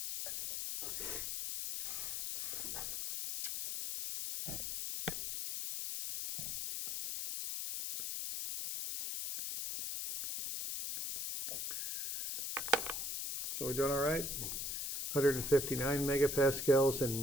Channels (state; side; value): noise; left; hiss, 2 dB below the sound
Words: So we're doing all right? 159 megapascals and